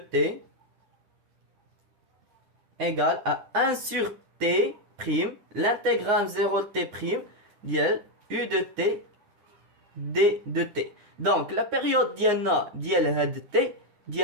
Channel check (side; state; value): left; late; 9.7 ms